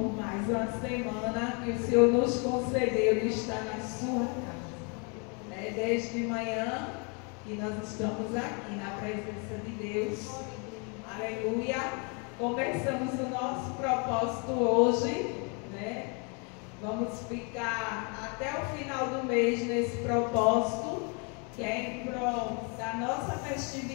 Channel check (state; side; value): quieter; right; 35.0 dB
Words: mais uma semana que o Senhor nos concedeu de estar na sua casa. Né? Desde manhã que nós estamos aqui na presença de Deus. Aleluia. Começamos o nosso propósito hoje, né? Vamos ficar até o final do mês nesse propósito, que é em prol da nossa